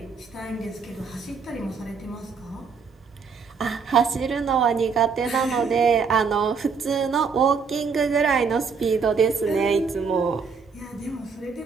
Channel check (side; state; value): left; quieter; 5.5 dB